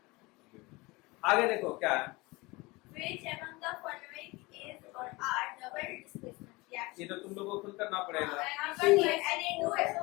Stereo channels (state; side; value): quieter; right; 23.4 dB